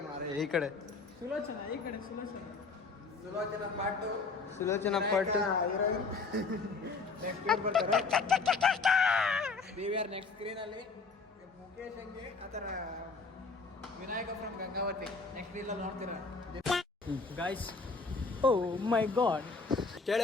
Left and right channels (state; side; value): quieter; right; 4.3 dB